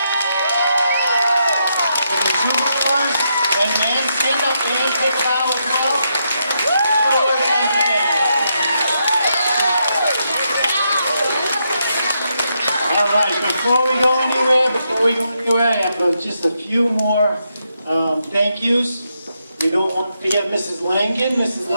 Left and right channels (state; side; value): inverted; both; correlation -0.81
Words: for the superstars, and man, stand up and take a bow as well. Good work once again. All right, before we go anywhere, I have just a few more thank yous. We don't want to forget Mrs. Langan. Mrs.